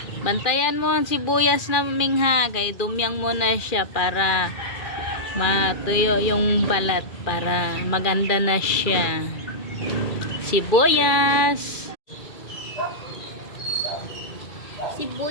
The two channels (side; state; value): right; late; 2.4 ms